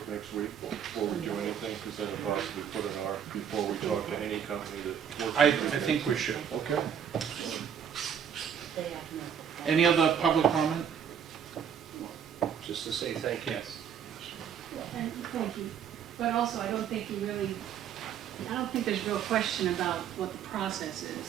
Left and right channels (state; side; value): quieter; left; 8.3 dB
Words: next week before we do anything? Because then it'll possibly put an R before we talk to any company that works. I think we should. Okay. Any other public comment? just to say thank you. Yes. And thank you. But also, I don't think there's real question about what the process